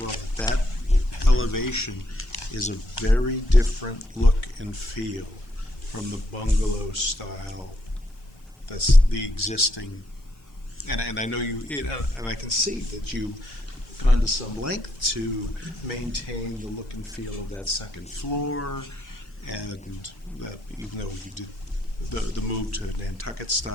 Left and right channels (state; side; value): normal; both; correlation 0.76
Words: that elevation is a very different look and feel from the bungalow style that's the existing. And I know and I can see that you gone to some length to maintain the look and feel of that second floor, and that even though you did the move to Nantucket